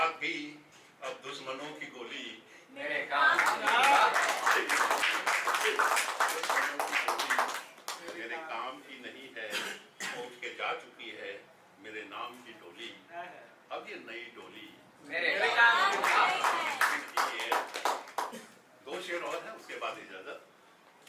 भी, अब दुश्मनों की गोली मेरे काम मेरे काम की नहीं है। पहुंच के जा चुकी है मेरे नाम की डोली, अब ये नई डोली मेरे काम की है। 2 शेर और है, उसके बाद इजाजत।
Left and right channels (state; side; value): identical; both; correlation 1.00